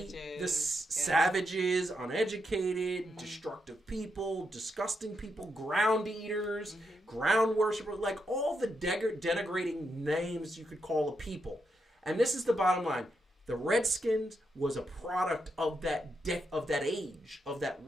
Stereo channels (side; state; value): both; normal; correlation 0.82